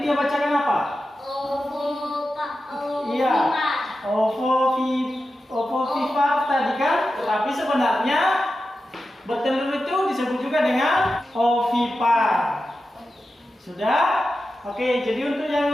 dia bacakan apa? Iya, ovovivipar tadi kan? Tapi sebenarnya bertelur itu disebut juga dengan ovipar. Sudah? Oke, jadi untuk yang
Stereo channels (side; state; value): both; normal; correlation 0.92